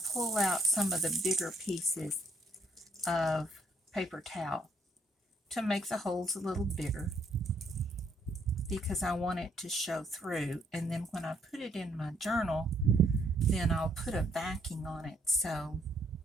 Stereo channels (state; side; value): normal; both; correlation 0.70